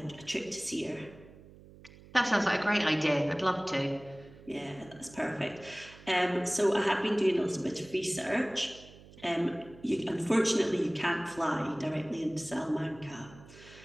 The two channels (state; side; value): noise; right; hum, 21 dB below the sound